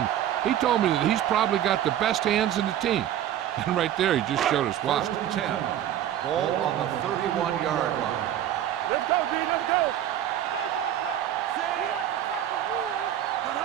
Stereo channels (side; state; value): left; quieter; 11.3 dB